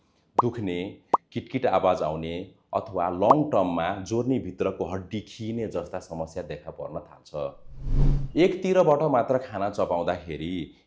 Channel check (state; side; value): identical; both; correlation 1.00